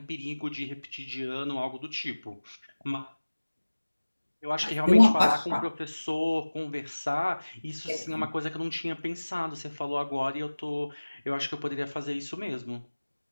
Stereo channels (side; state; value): both; inverted; correlation -1.00